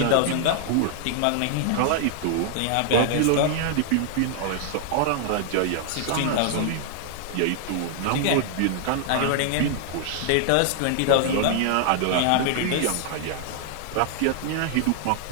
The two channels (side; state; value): both; different; correlation 0.00